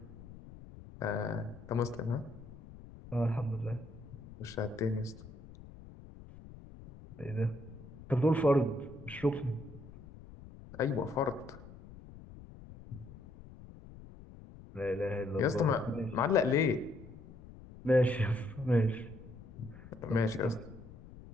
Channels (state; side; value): noise; left; rumble, 17 dB below the sound